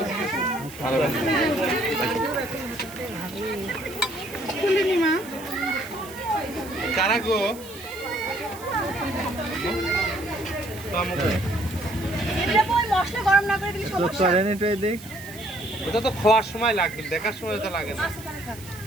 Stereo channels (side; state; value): right; noise; hiss, 17 dB below the sound